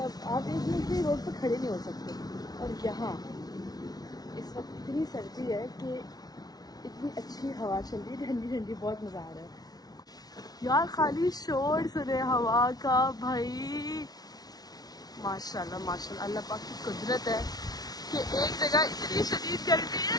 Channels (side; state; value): right; late; 0.19 ms